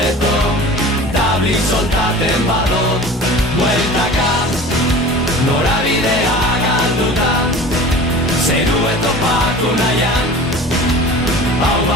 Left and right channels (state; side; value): normal; both; correlation 0.39